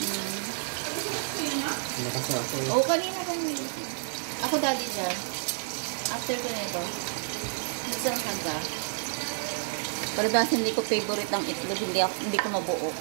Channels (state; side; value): silent; left; 58 dB below the other